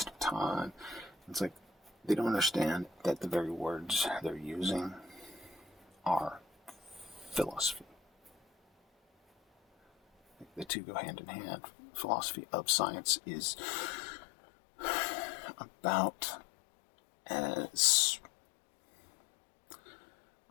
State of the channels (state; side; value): drops out; right; at 10.7 s